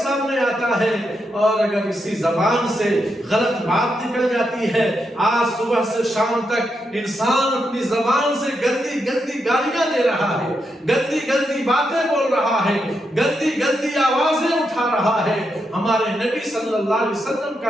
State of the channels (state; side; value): normal; both; correlation 0.83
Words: سامنے آتا ہے۔ اور اگر اسی زبان سے غلط بات نکل جاتی ہے، آج صبح سے شام تک انسان اپنی زبان سے گندی گندی گالیاں دے رہا ہے، گندی گندی باتیں بول رہا ہے، گندی گندی آوازیں اٹھا رہا ہے۔ ہمارے نبی صلی اللہ علیہ وسلم کا